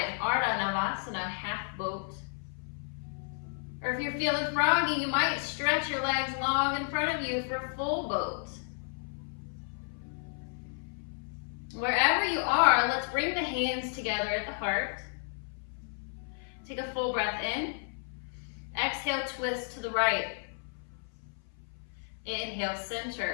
Ardha Navasana, half boat. Or if you're feeling froggy, you might stretch your legs long in front of you for full boat. Wherever you are, let's bring the hands together at the heart. Take a full breath in. Exhale, twist to the right. Inhale,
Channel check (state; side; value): silent; right; 56 dB below the other